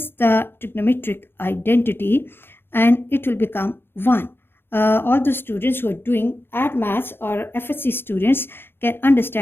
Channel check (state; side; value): late; right; 0.11 ms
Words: the trigonometric identity, and it will become 1. All the students who are doing add maths or FSC students can